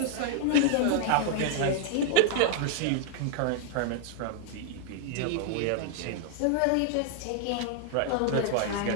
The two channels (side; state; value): both; different; correlation 0.00